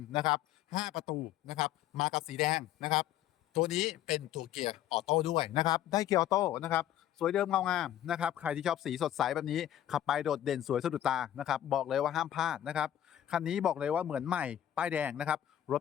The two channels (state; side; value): quieter; right; 11.8 dB